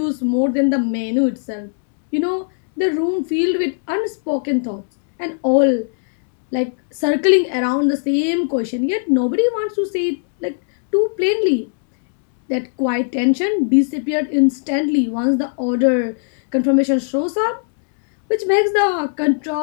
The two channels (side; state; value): right; silent; 67 dB below the other